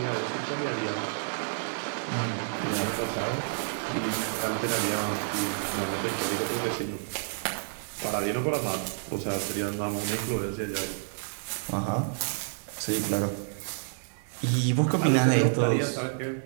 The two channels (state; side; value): silent; left; digital silence